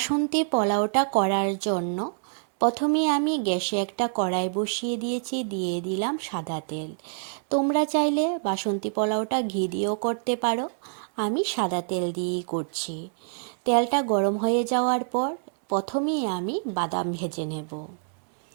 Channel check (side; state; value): left; silent; digital silence